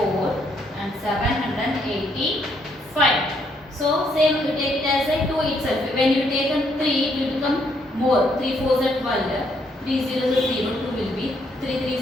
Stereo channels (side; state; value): both; normal; correlation 0.72